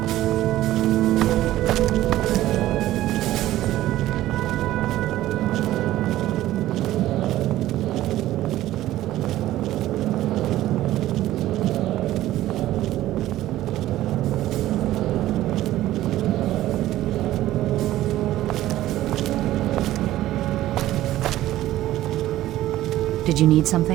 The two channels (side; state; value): left; quieter; 14.7 dB